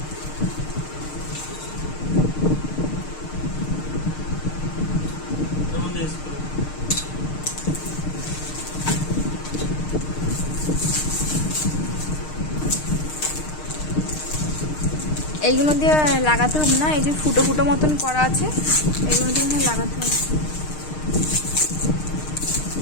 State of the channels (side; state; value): right; late; 6.5 ms